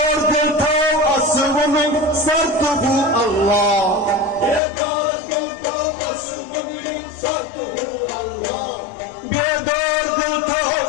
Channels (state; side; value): drops out; right; at 4.6 s